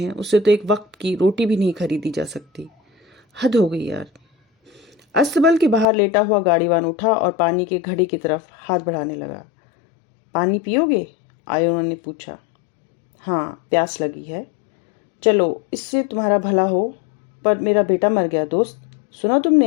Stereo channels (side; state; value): right; drops out; at 5.9 s